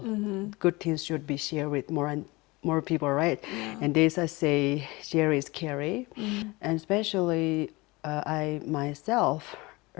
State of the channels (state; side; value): quieter; right; 23.2 dB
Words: Good things should be shared with more and more people, right? And this I say, share is carry. And especially I myself